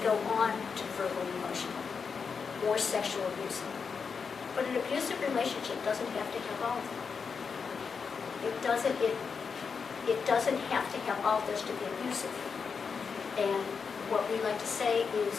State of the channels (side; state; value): right; quieter; 5.7 dB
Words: on to verbal emotional or sexual abuse. But an abusive relationship doesn't have to have all of them. It doesn't have to have all of this to be abusive. And what we like to say